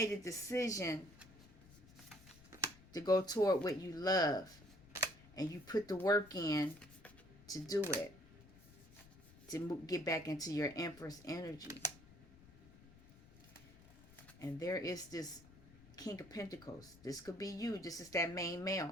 a decision to go toward what you love. And you put the work in to do it. To get back into your Empress energy. And there is this King of Pentacles. This could be you. This is that main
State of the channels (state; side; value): noise; left; rumble, 22 dB below the sound